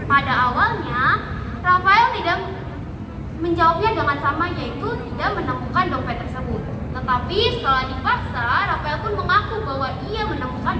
Pada awalnya, Rafael tidak menjawabnya dengan sama, yaitu tidak menemukan dompet tersebut. Tetapi setelah dipaksa, Rafael pun mengaku bahwa ia menemukan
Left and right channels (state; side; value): identical; both; correlation 1.00